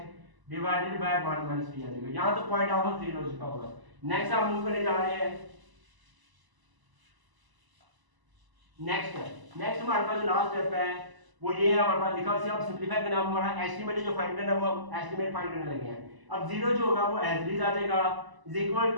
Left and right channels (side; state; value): left; late; 1.0 ms